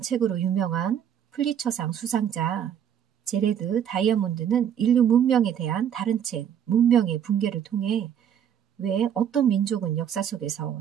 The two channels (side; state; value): left; quieter; 9.1 dB